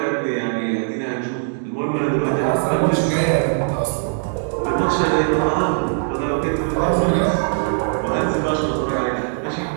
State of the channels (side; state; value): left; silent; 65 dB below the other